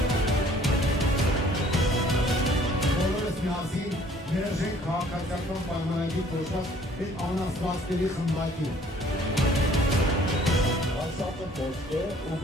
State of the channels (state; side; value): normal; both; correlation 0.57